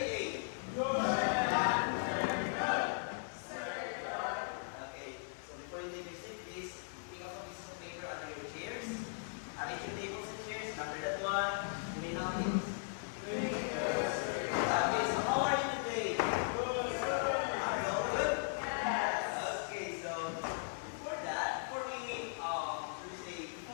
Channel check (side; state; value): right; silent; 52 dB below the other